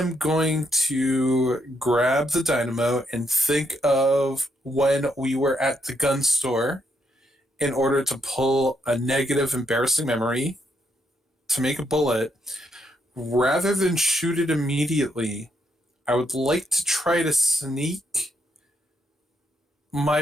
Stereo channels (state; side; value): normal; both; correlation 0.78